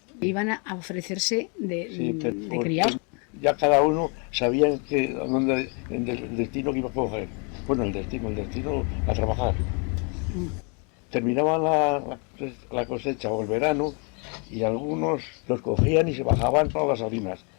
Iban a ofrecerse de porque criados. ya cada uno sabía el destino que iba a coger. Bueno, el destino a trabajar. Terminaba la cosecha o el verano y algunos los cogían y se bajaban para las salinas.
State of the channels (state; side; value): quieter; right; 35.7 dB